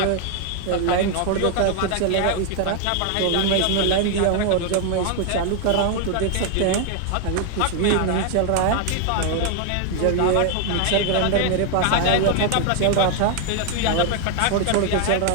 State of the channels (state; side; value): different; both; correlation 0.01